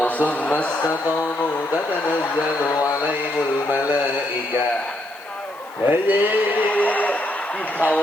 tsumma istaqamu tatanazzalu 'alaihimul malaikah. Hei,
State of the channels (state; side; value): noise; left; hiss, 26 dB below the sound